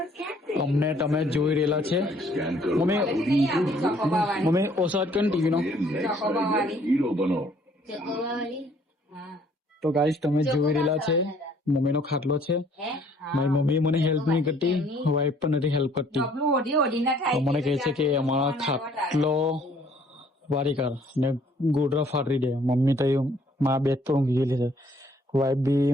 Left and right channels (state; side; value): normal; both; correlation 0.61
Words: અમને તમે જોઈ રહેલા છે. મમ્મી મમ્મી ઓસાદ કન ટીવી નો. તો ગાઈસ, તમે જોઈ રહેલા છે મમ્મીનો ખાટલો છે. મારી મમ્મી મને હેલ્પ નહીં કરતી, વાઈફ પણ નથી હેલ્પ કરતી. તો મને કહે છે કે અમારા ખાટલો વારી કર ને ગોડરા ફાટરી દે. મમ્મી તો મારા બેડ તો ઊંઘી ગયેલી છે. વાઈફ બી